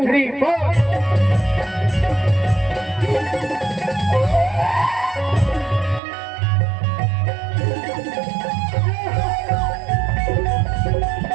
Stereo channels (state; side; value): drops out; left; at 6.0 s